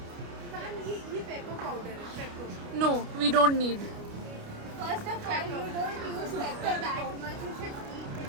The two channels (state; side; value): late; left; 29 ms